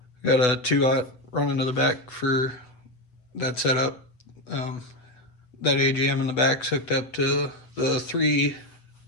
Got a 2-aught running to the back for that setup. That AGM in the back's hooked up to the 3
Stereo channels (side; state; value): right; late; 8.1 ms